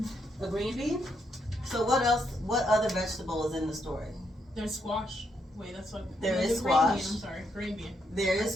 a green bean. So what else, what other vegetable is in the story? There's squash. Wait, that's what. There no, is the green bean, squash. I'm sorry, green bean. There is I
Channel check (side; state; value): both; normal; correlation 0.78